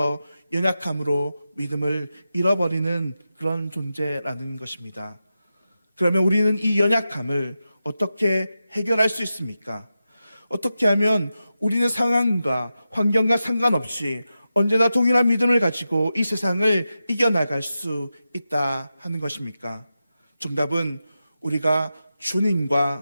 연약함으로 믿음을 잃어버리는 그런 존재라는 것입니다. 그러면 우리는 이 연약함을 어떻게 해결할 수 있습니까? 어떻게 하면 우리는 상황과 환경과 상관없이 언제나 동일한 믿음을 가지고 이 세상을 이겨나갈 수 있다 하는 것입니까? 정답은 우리가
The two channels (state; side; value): inverted; both; correlation -0.91